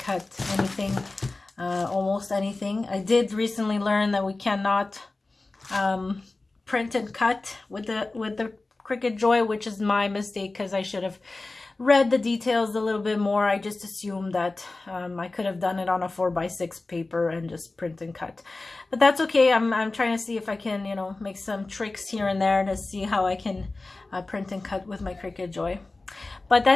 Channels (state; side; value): quieter; right; 3.3 dB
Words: anything, almost anything. I did recently learn that we cannot print and cut with the Cricut Joy, which is my mistake, because I should have read the details a little bit more, I just assumed that I could have done it on a 4x6 paper and just print and cut. But that's okay. I'm trying to see if I can, you know, make some tricks here and there to see how I can print and cut with my Cricut Joy. But